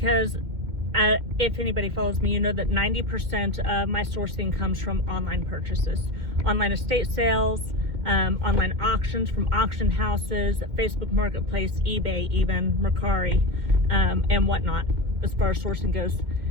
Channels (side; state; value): left; late; 2.1 ms